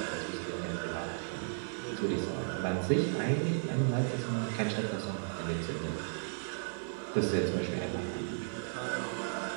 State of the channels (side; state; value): left; silent; 55 dB below the other